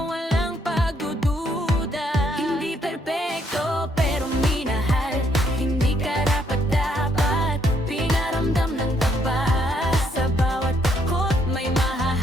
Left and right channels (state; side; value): normal; both; correlation 0.71